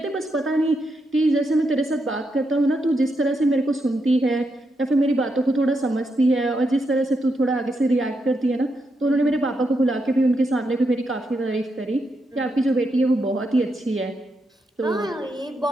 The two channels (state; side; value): normal; both; correlation 0.82